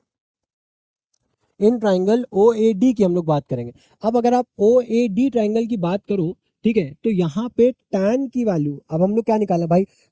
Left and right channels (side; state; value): both; identical; correlation 1.00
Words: इन ट्राइंगल ओ ए डी की हम लोग बात करेंगे। अब अगर आप ओ ए डी ट्राइंगल की बात करो, ठीक है, तो यहाँ पे tan की वैल्यू, अब हम लोग क्या निकालना है भाई,